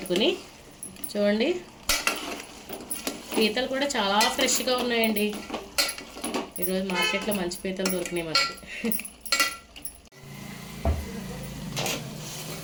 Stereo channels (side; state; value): both; identical; correlation 1.00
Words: చూడండి పీతలు కూడా చాలా ఫ్రెష్గా ఉన్నాయండి. ఈరోజు మార్కెట్లో మంచి పీతలు దొరికినాయి మనకి.